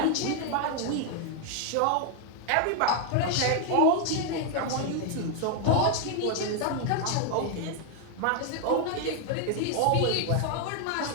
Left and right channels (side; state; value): both; different; correlation 0.00